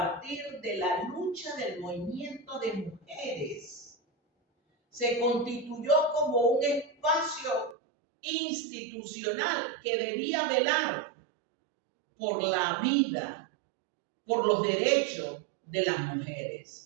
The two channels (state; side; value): drops out; left; at 7.8 s